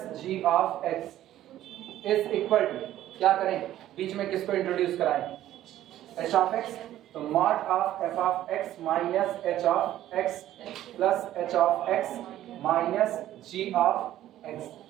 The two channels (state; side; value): quieter; left; 13.1 dB